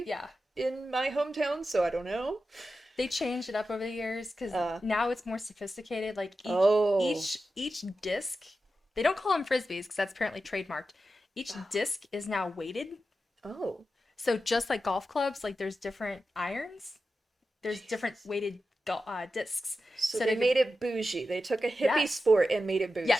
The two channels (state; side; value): normal; both; correlation 0.91